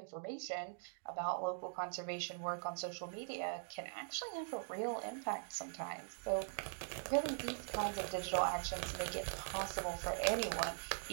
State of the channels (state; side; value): silent; left; digital silence